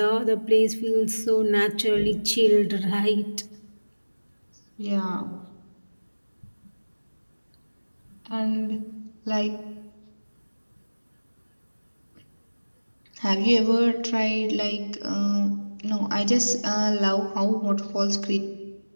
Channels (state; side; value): inverted; both; correlation -1.00